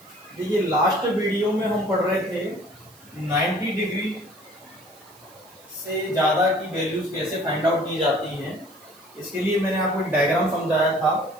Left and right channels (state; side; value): noise; right; hiss, 25 dB below the sound